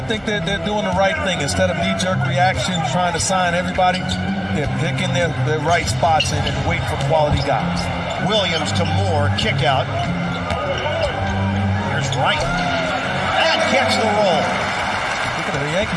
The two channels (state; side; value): identical; both; correlation 1.00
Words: think they're doing the right thing. Instead of knee-jerk reaction, trying to sign everybody, they're picking their right spots and waiting for quality guys. Williams to Moore, kick out. Here's Wright. And gets the roll. Looking at the